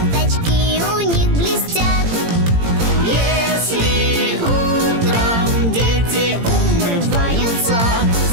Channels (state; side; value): late; left; 18 ms